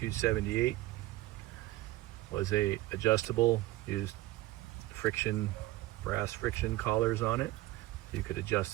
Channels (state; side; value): quieter; left; 17.4 dB